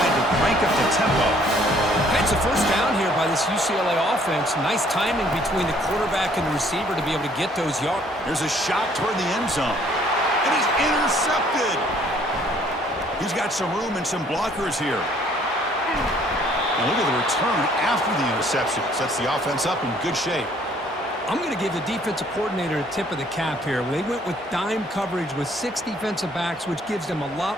to crank up the tempo. It's a first down here by this UCLA offense. Nice timing between the quarterback and the receiver to be able to get those yards. There's a shot toward the end zone. And he's intercepted. He's got some room and some blockers here. And look at the return after the interception. Sets the offense up in good shape. I'm going to give the defensive coordinator a tip of the cap here. They went with dime coverage with 6 defensive backs, which gives them a lot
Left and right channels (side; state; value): both; normal; correlation 0.61